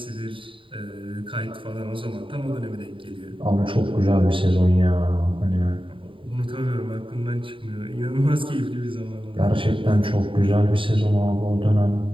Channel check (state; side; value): late; left; 0.25 ms